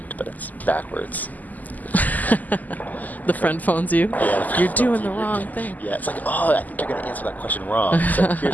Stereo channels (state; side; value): late; right; 0.081 ms